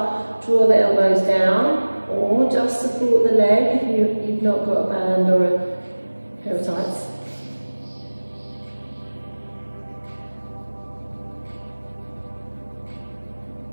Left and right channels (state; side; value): inverted; both; correlation -1.00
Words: Draw the elbows down, or just support the leg if you've not got a band or a pair of tights.